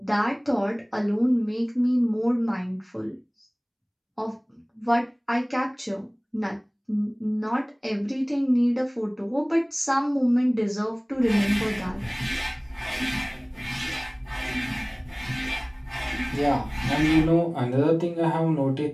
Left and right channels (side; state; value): both; identical; correlation 1.00